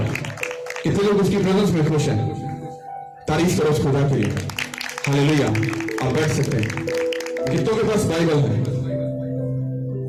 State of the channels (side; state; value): both; identical; correlation 1.00